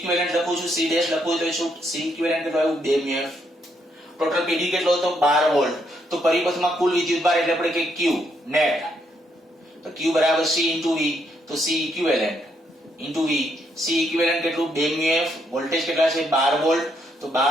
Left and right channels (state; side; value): normal; both; correlation 0.75